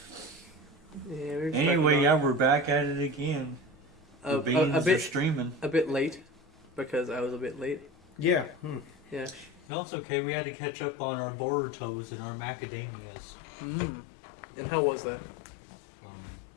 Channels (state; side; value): drops out; right; at 9.7 s